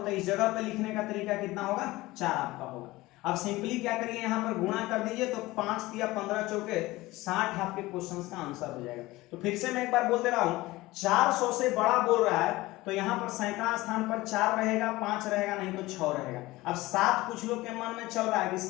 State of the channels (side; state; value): right; quieter; 19.3 dB